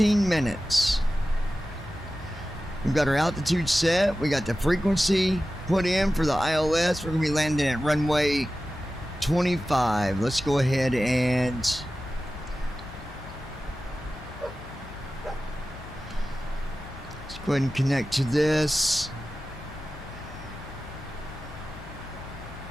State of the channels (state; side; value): noise; left; hum, 17 dB below the sound